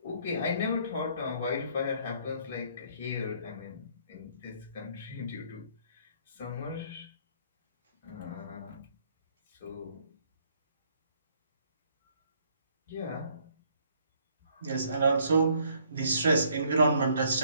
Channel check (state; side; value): inverted; both; correlation -0.64